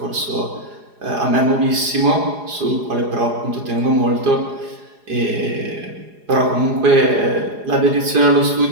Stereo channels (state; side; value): late; left; 4.8 ms